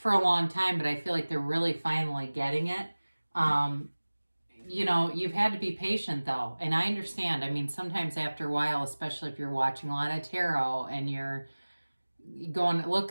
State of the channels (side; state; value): both; inverted; correlation -1.00